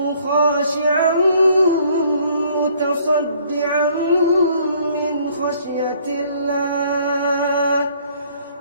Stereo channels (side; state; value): both; inverted; correlation -0.60